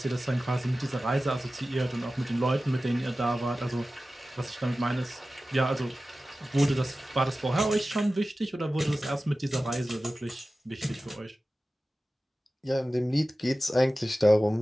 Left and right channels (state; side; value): normal; both; correlation 0.95